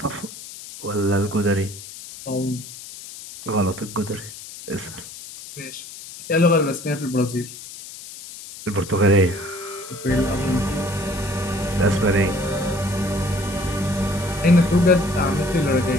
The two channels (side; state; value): left; noise; hiss, 14 dB below the sound